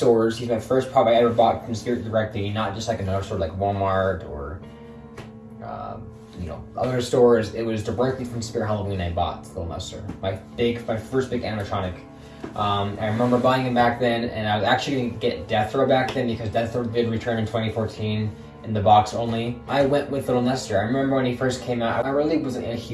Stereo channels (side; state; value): both; identical; correlation 1.00